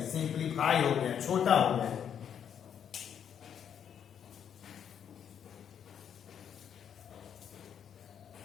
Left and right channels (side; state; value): right; quieter; 8.5 dB